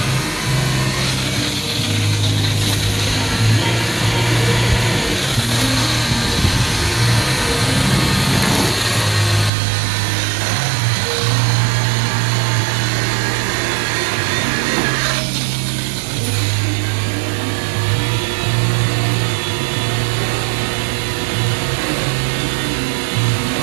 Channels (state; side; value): drops out; left; at 9.5 s